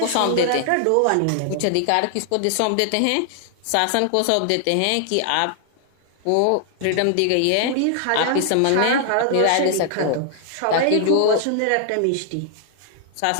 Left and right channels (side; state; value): both; different; correlation 0.00